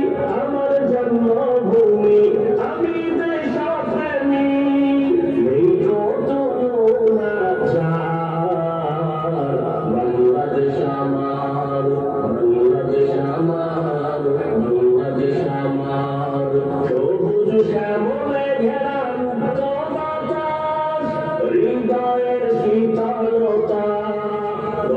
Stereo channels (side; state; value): both; identical; correlation 1.00